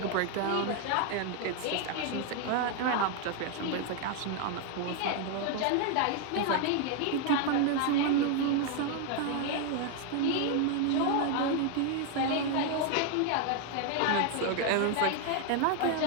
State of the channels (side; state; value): both; different; correlation 0.01